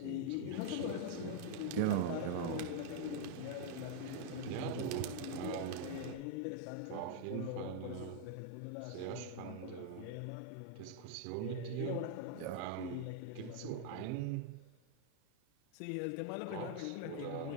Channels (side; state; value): both; different; correlation -0.01